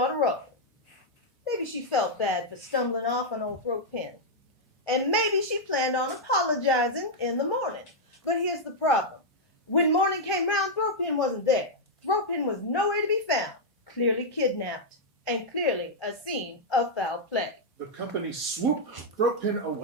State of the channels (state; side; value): normal; both; correlation -0.05